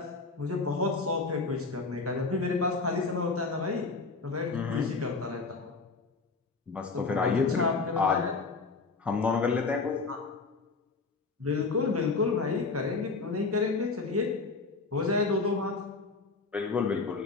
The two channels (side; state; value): right; quieter; 4.1 dB